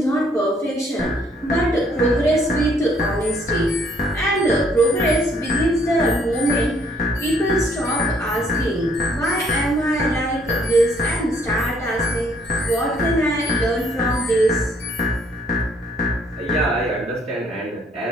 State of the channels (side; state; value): both; normal; correlation 0.65